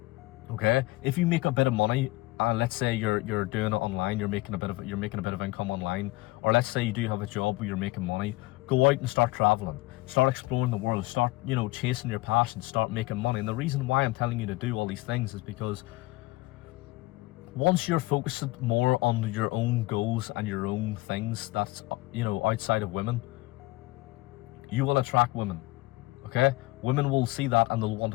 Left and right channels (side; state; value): right; quieter; 20.8 dB